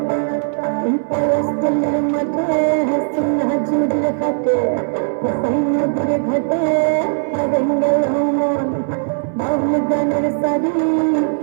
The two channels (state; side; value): silent; left; 63 dB below the other